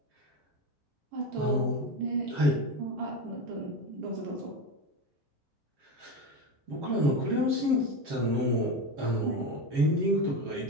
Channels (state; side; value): late; left; 7.4 ms